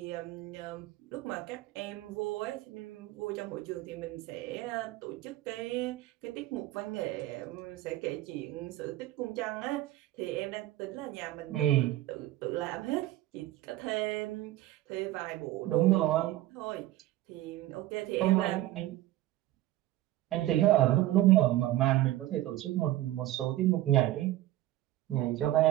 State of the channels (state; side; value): quieter; left; 15.3 dB